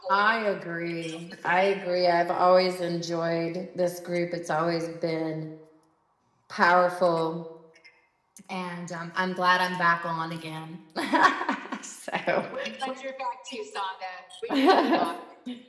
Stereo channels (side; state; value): both; identical; correlation 1.00